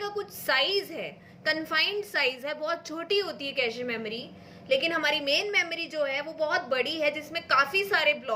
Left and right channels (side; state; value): both; identical; correlation 1.00